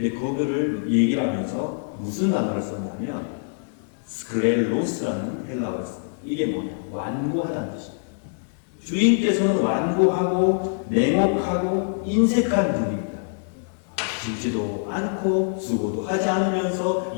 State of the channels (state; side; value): silent; right; digital silence